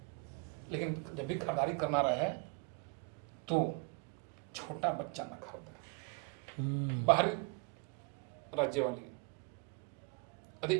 लेकिन जब भी खरीदारी करना रहे तो छोटा बच्चा न खरीदें, बाहरी राज्य वाली।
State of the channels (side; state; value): left; quieter; 29.8 dB